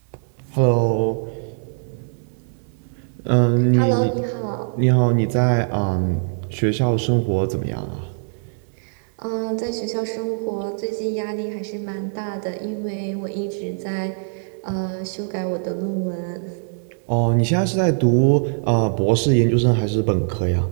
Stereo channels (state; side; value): silent; left; digital silence